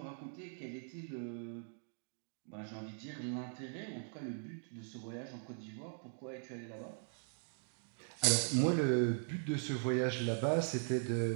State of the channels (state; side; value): silent; left; digital silence